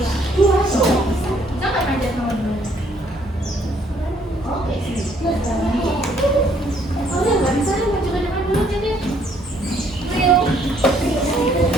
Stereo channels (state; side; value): normal; both; correlation 0.65